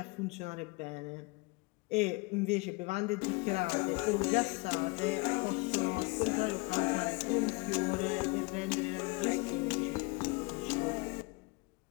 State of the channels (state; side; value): quieter; right; 27.7 dB